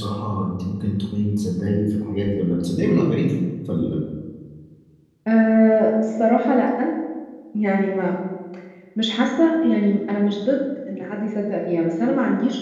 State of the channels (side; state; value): both; identical; correlation 1.00